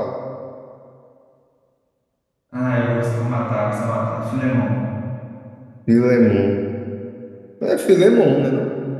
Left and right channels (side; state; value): both; identical; correlation 1.00